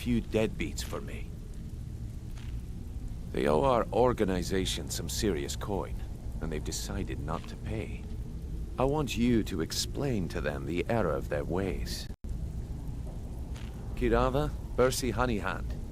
deadbeats for me? They owe our organization some serious coin, and they've decided not to pay. I want you to explain to them the error of their ways. Kirava, Bersi Honeyhand,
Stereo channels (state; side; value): identical; both; correlation 1.00